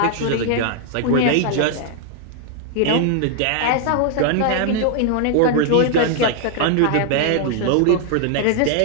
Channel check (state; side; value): different; both; correlation 0.00